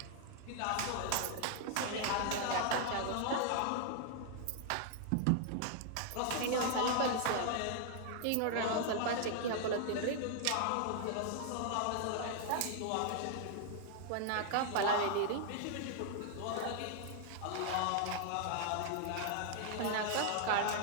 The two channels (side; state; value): both; different; correlation 0.00